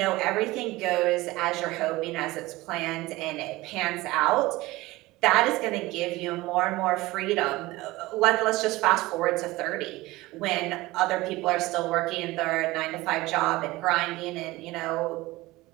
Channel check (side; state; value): left; quieter; 19.7 dB